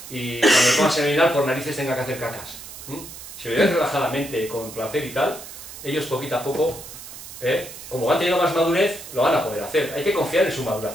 cuando tomas el orinal por narices tenga que hacer cacas. Si lo lleváis relajadamente, con placer y tal, ellos poquito a poco, como van teniendo más madurez, lo van a poder hacer. Hay que confiar en su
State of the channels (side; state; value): right; noise; hiss, 13 dB below the sound